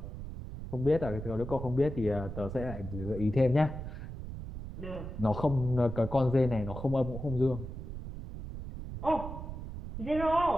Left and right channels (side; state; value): right; noise; rumble, 8 dB below the sound